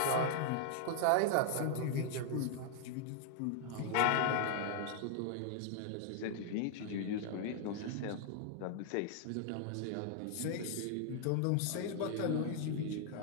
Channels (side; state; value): both; different; correlation 0.00